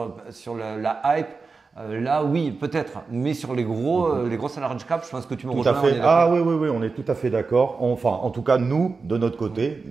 la hype. Là, oui, peut-être. Mais sur les grosses large cap, je pense que tu me Tout à rejoins. fait. Ah oui, oui, oui, on est tout à fait d'accord. Enfin, en tout cas, nous, de notre côté,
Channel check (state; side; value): quieter; left; 4.4 dB